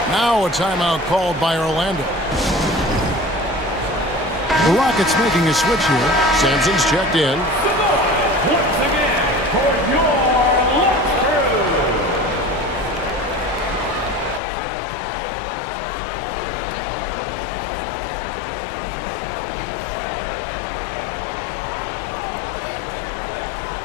Now a timeout called by Orlando. The Rockets making a switch here. Sampson's checked in. Once again, for your lunch crew.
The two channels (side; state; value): right; drops out; at 14.4 s